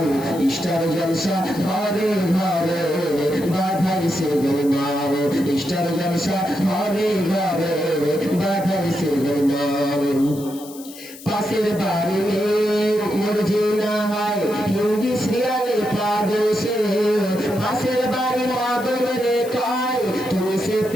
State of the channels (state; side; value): noise; left; hiss, 17 dB below the sound